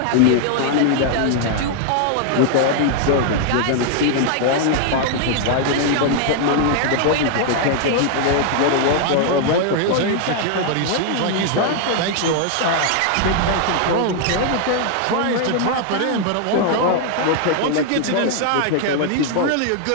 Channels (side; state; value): both; different; correlation 0.00